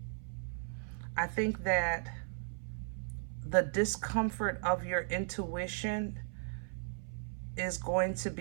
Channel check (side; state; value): left; silent; 53 dB below the other